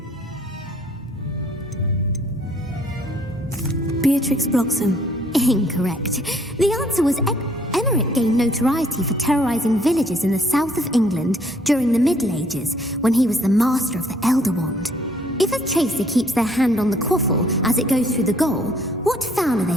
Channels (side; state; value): both; normal; correlation 0.62